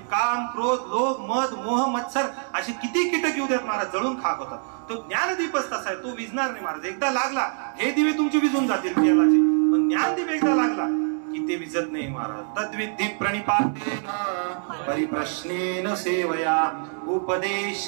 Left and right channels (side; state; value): left; silent; 57 dB below the other